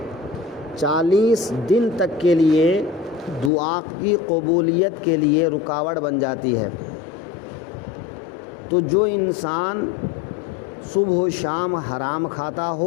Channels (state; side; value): drops out; right; at 3.5 s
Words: 40 دن تک کے لیے دعا کی قبولیت کے لیے رکاوٹ بن جاتی ہے۔ تو جو انسان صبح و شام حرام کھاتا